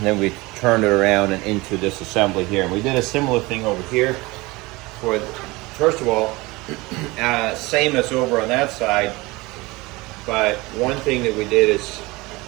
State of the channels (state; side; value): quieter; left; 22.6 dB